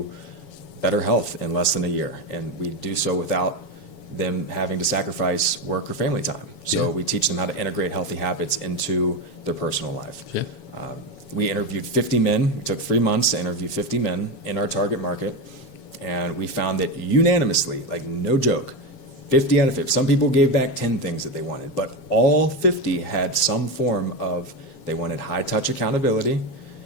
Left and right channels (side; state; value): right; late; 7.2 ms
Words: better health in less than a year. And we do so without them having to sacrifice work or family time. So Yeah. we teach them how to integrate healthy habits into their personal life. Yeah. We interviewed 50 men. We took 3 months to interview 50 men in our target market. And we found that unanimously, like, no joke, 50 out of 50. Some people gave back 10 things that they wanted, but all 50 had some form of, they wanted high touch accountability.